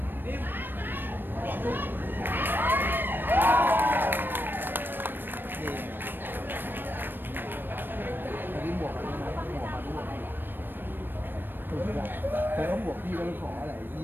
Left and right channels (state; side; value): late; left; 0.095 ms